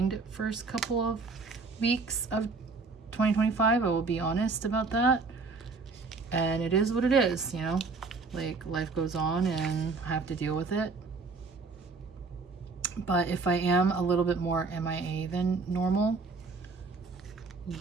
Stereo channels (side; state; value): left; quieter; 4.1 dB